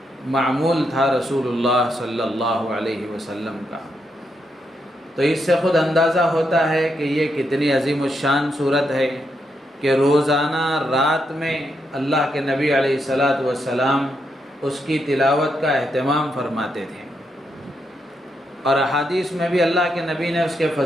معمول تھا رسول اللہ صلی اللہ علیہ وسلم کا. تو اس سے خود اندازہ ہوتا ہے کہ یہ کتنی عظیم الشان سورت ہے کہ روزانہ رات میں اللہ کے نبی علیہ الصلاۃ والسلام اس کی تلاوت کا اہتمام فرماتے تھے. اور احادیث میں بھی اللہ کے نبی نے اس کے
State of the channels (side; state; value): both; normal; correlation 0.81